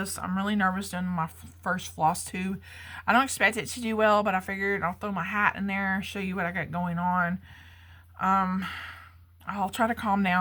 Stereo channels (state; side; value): identical; both; correlation 1.00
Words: I'm really nervous doing my first floss tube. I don't expect it to do well, but I figured I'll throw my hat in there, show you what I got going on. I'll try to calm